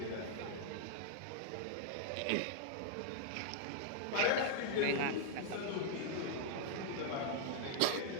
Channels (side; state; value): both; different; correlation -0.01